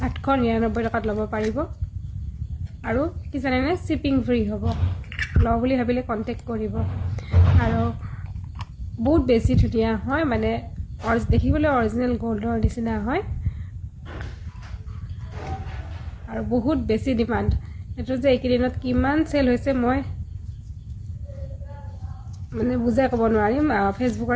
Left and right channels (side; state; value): both; identical; correlation 1.00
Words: 899 টকাত ল'ব পাৰিব আৰু কি জানেনে শিপিং ফ্ৰী হ'ব ল বুলি ভাবিলে কন্টাক্ট কৰিব আৰু বহুত বেছি ধুনিয়া হয় মানে দেখিবলৈ অৰিজিনাল গোল্ডৰ নিচিনা হয় আৰু বহুত বেছি ডিমান্ড এটো যে একেদিনত কিমান সেল হৈছে মই মানে বুজাই ক'ব নোৱাৰিম ফেসবুকৰ